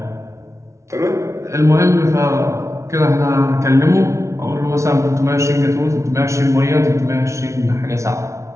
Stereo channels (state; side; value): late; left; 0.14 ms